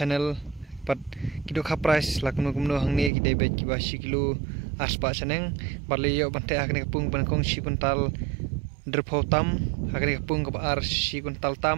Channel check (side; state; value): left; drops out; at 3.1 s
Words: pat ki dokha price lakno kumno hangni ki debet ki basi kilo aspa chaneng bar layo ban te hakne kapung ban kong si kuntal drpo tam hakne kapung ka ar si kuntal